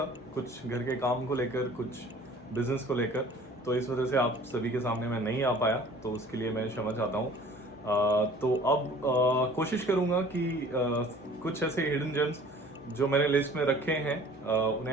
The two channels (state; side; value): normal; both; correlation 0.49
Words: कुछ घर के काम को लेकर, कुछ बिजनेस को लेकर, तो इस वजह से आप सभी के सामने मैं नहीं आ पाया, तो उसके लिए मैं क्षमा चाहता हूँ। तो अब कोशिश करूँगा कि कुछ ऐसे हिडन जेम्स जो मैंने लिस्ट में रखे हैं उन्हें